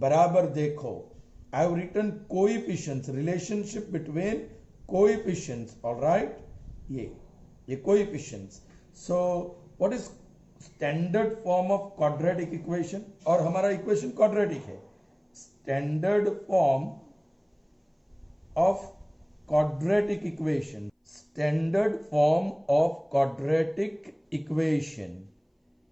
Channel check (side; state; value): both; identical; correlation 1.00